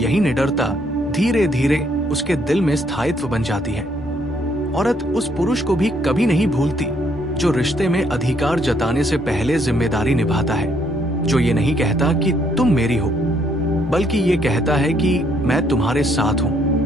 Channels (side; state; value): both; normal; correlation 0.69